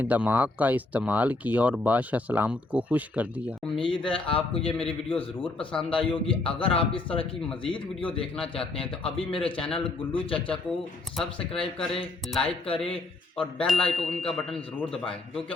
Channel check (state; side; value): quieter; right; 3.1 dB